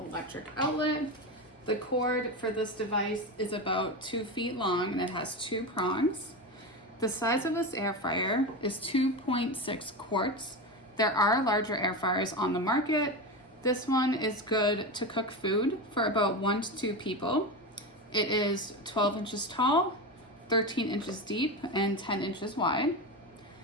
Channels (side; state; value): both; normal; correlation 0.20